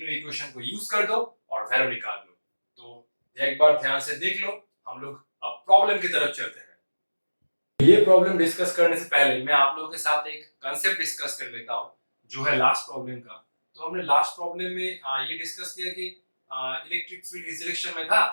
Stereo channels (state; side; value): inverted; both; correlation -1.00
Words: इक्वेशन को यूज कर दो और वैल्यू निकाल लो। तो एक बार ध्यान से देख लो। हम लोग अब प्रॉब्लम की तरफ चलते हैं। ये प्रॉब्लम डिस्कस करने से पहले मैं आप लोगों के साथ एक कांसेप्ट डिस्कस कर लेता हूँ जो है लास्ट प्रॉब्लम का। तो हमने लास्ट प्रॉब्लम में ये डिस्कस किया कि इलेक्ट्रिक फील्ड इस डायरेक्शन में था,